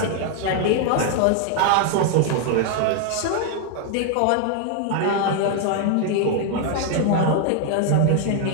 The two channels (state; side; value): different; both; correlation 0.00